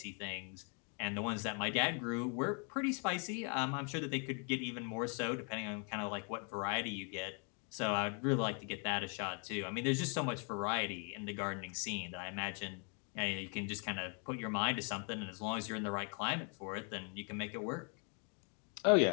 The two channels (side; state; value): right; quieter; 38.5 dB